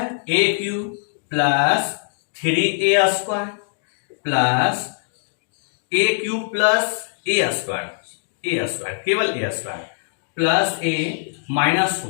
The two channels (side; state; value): right; silent; 64 dB below the other